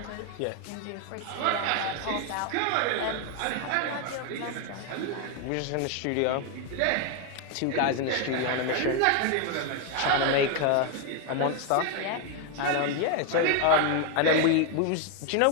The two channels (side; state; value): both; different; correlation 0.01